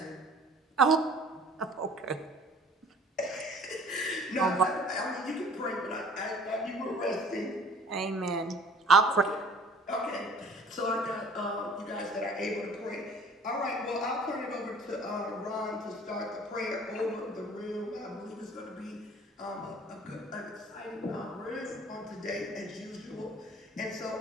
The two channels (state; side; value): normal; both; correlation 0.51